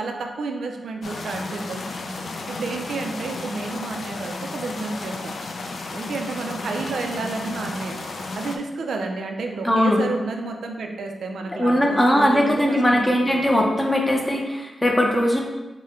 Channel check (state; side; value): normal; both; correlation 0.89